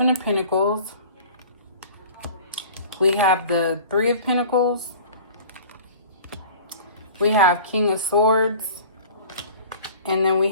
of Pentacles. We have the Three of Pentacles. We have King of Swords. And then we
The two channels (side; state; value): both; inverted; correlation -0.43